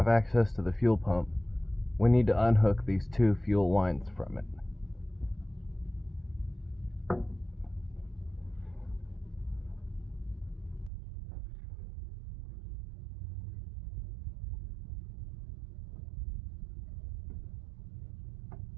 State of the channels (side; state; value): left; drops out; at 10.9 s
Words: access to the fuel pump, we need to unhook these two fuel lines from it.